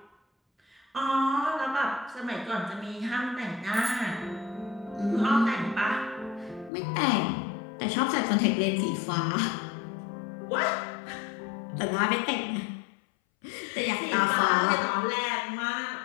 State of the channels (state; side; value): drops out; right; at 6.7 s